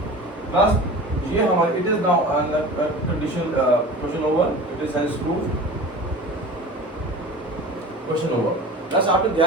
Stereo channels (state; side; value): normal; both; correlation 0.37